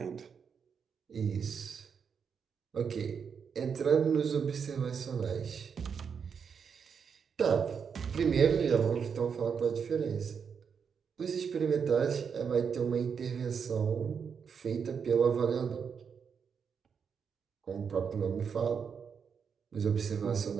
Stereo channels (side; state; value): left; quieter; 6.6 dB